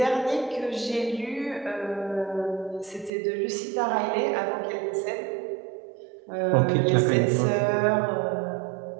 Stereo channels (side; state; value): left; drops out; at 3.1 s